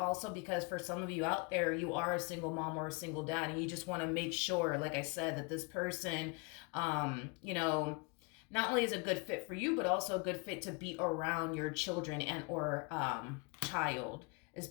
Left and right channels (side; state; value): right; quieter; 31.0 dB